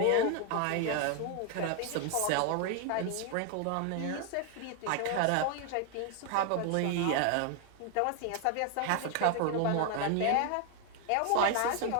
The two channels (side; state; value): both; different; correlation 0.00